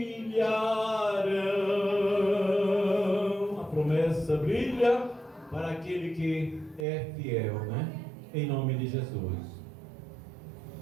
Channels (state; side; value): drops out; left; at 6.9 s